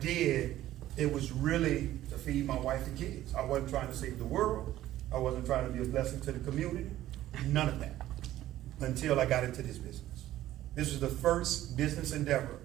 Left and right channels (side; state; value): left; quieter; 14.0 dB